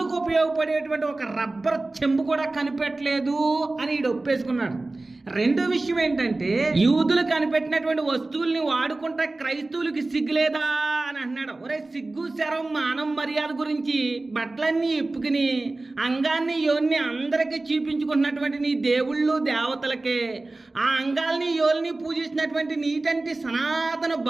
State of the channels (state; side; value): quieter; left; 3.1 dB